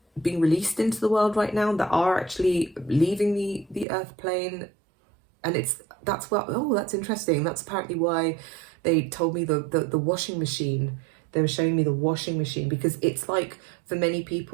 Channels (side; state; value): left; drops out; at 3.9 s